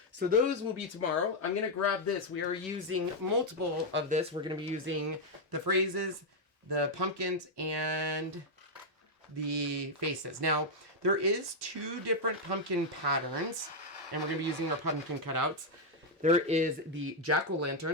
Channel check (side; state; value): both; normal; correlation -0.01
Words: So those will be tomorrow. I'm going to grab this. We are using multiple of this. We're going to be using the phrases, the pumpkins, and the faces. Now, there is 2 different pumpkin patterns, and we're going to be using our pumpkin cutouts. There is the